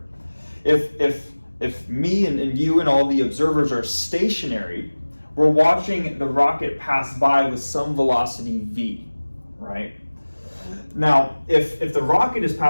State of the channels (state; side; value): inverted; both; correlation -1.00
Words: If me and you and all the observers are stationary, we're watching the rocket pass by with some velocity v, right? Now, if the rocket is